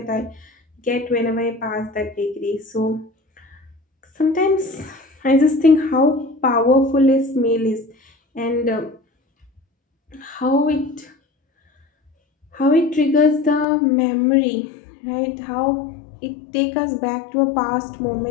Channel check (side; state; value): right; drops out; at 13.7 s